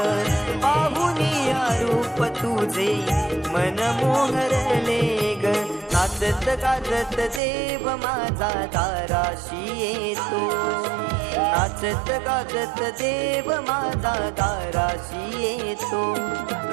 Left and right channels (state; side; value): drops out; left; at 7.4 s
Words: पाहुनिया रूप तुझे मन मोहरले ग। नाचत गाजत देव माझा दाराशी येतो, नाचत गाजत देव माझा दाराशी येतो।